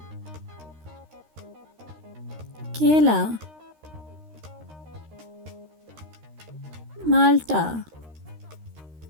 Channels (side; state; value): left; late; 13 ms